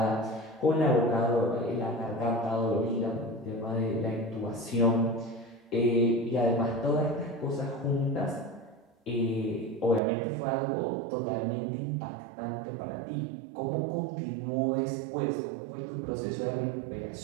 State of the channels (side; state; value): left; drops out; at 10.0 s